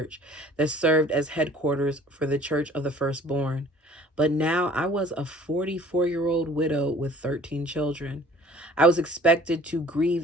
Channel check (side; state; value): both; normal; correlation 0.51